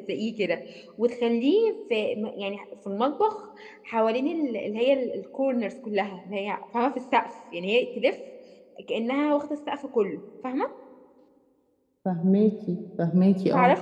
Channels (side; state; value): both; identical; correlation 1.00